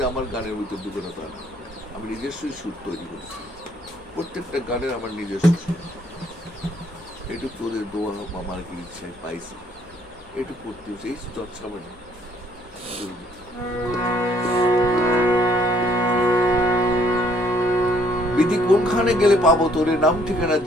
আমার গানের ভিতর ঢুকে না তা না, আমি নিজস্বই সুর তৈরি করছি। প্রত্যেকটা গানের আমার নিজস্ব সুর। একটু তোদের দোয়া আমার কি ইচ্ছায় পাইছি, একটু করতে হচ্ছে, এই চর্চা মানে বিধি কোনখানে গেলে পাবো তোরে, নাম ঠিকানা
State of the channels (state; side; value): noise; left; hum, 28 dB below the sound